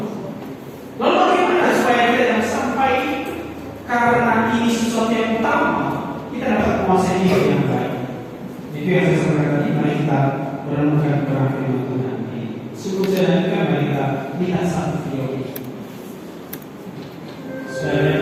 Lalu bagaimana supaya kita jangan sampai karena ini sesuatu yang utama kita dapat menguasai hidup yang baik? Itu yang saya sampaikan tadi. Mari kita merenungkan kepada firman Tuhan. Sebelum saya lanjutkan, mari kita lihat satu video ini supaya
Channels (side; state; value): both; identical; correlation 1.00